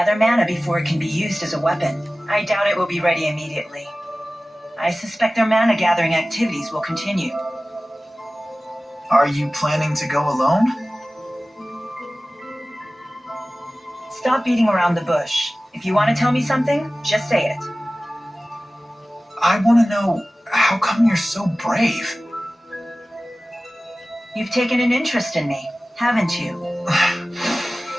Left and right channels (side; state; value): both; normal; correlation 0.97